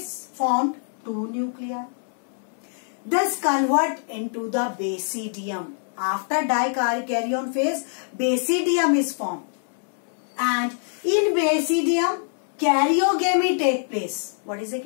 formed two nuclei. This convert into the basidium. After dikaryon phase, basidium is formed, and in basidium karyogamy take place. What is a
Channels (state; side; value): silent; right; 62 dB below the other